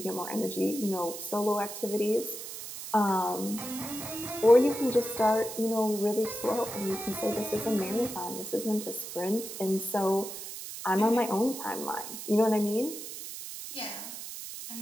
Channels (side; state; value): right; noise; hiss, 9 dB below the sound